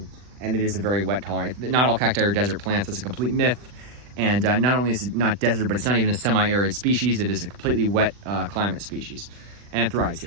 and it is a very wet tolerant. Not all cacti are desert plants. That's a complete myth. And not only is it not desert, but it's not even a semi-arid species. It is a completely wet climate species, and it thrives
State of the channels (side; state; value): left; late; 40 ms